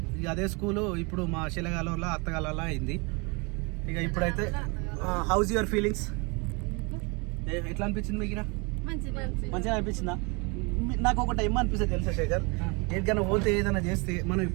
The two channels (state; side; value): quieter; left; 30.0 dB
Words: ఇక అదే స్కూలు ఇప్పుడు మా శిలగాలలో అత్తగాలలో అయింది. ఇక ఇప్పుడైతే హౌస్ యువర్ ఫీలింగ్స్? ఎట్లా అనిపించింది మీకు? మంచిగా అనిపించిందా? నాకు ఒకటి ఏమనిపిస్తుంది తెలుసా శేఖర్, ఎక్కడికైనా పోతే ఏదైనా చేస్తే మనం